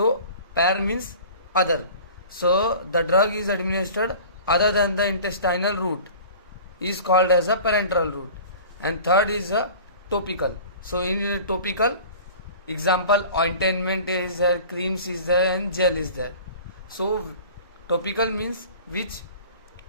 par means other. So the drug is administered other than the intestinal route is called as a parenteral route. And third is a topical. So in topical, example, ointment is there, creams is there, and gel is there. So topical means which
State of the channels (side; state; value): both; inverted; correlation -0.42